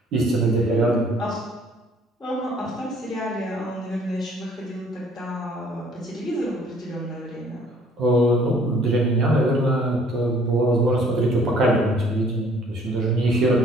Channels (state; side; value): normal; both; correlation 0.58